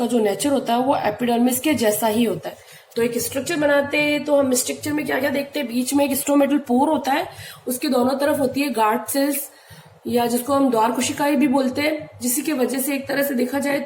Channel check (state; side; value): identical; both; correlation 1.00